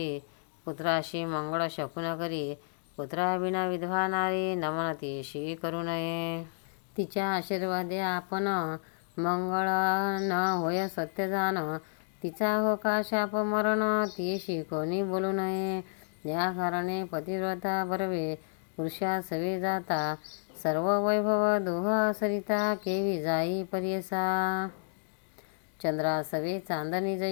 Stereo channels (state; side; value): silent; right; digital silence